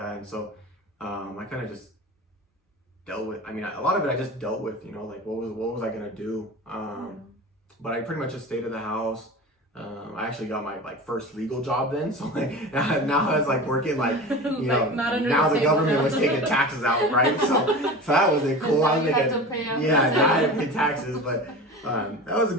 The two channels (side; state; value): both; normal; correlation 0.32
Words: and so I kind of just dealt with. I mean, a lot of it I just dealt with, you know, like what was I gonna do? But I pretty much just stayed at the house. I actually got my like first legal job then, so like now I was like working like you know now the government was taking taxes out, right? So that was cool. I was making now I had to pay taxes, but that was a